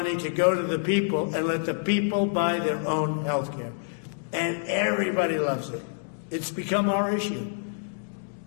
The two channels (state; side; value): silent; right; digital silence